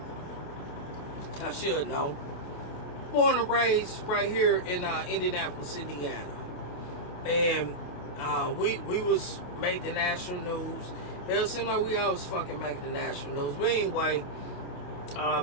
I should know, born and raised right here in Indianapolis, Indiana. And we was made the national news. It seemed like we always fucking make the national news. But anyway,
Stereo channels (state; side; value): late; right; 28 ms